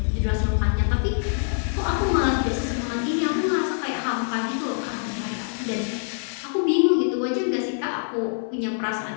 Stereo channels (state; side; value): silent; right; digital silence